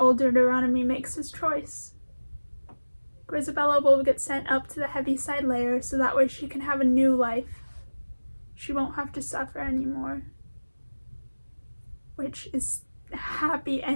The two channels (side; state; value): both; inverted; correlation -1.00